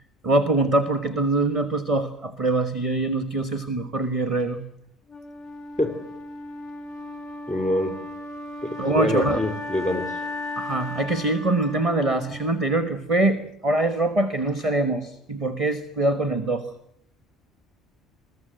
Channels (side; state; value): both; normal; correlation 0.43